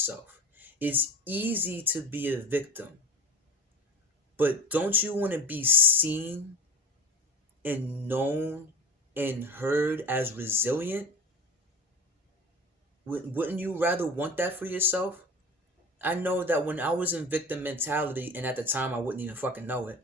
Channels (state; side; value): normal; both; correlation 0.35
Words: It's easy to be a victim, but don't you want to be seen and known and heard as resilient? Wouldn't you rather want that for yourself? I know that when I was in victim mentality, and at the time I wouldn't even fucking know it,